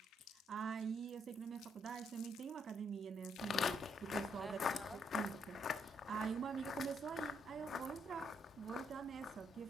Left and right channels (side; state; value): both; normal; correlation 0.74